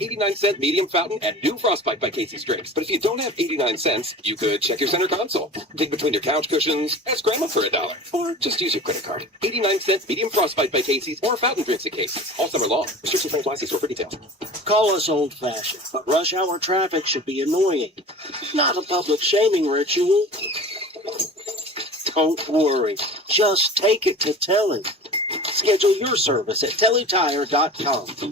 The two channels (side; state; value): both; normal; correlation 0.38